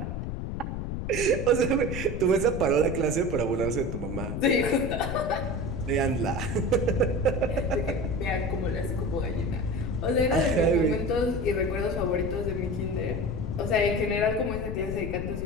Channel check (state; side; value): noise; left; rumble, 4 dB below the sound